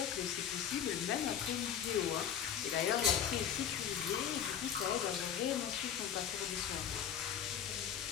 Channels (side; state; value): right; quieter; 8.9 dB